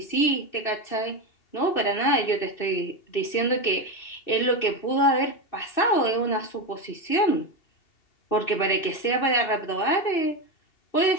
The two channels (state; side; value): late; right; 2.6 ms